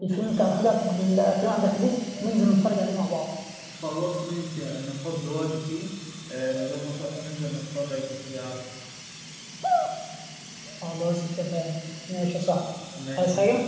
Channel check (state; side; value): identical; both; correlation 1.00